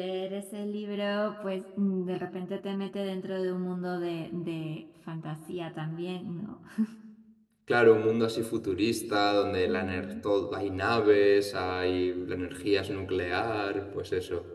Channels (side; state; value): both; identical; correlation 1.00